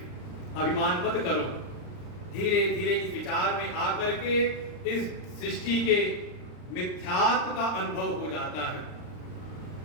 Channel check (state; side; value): late; right; 39 ms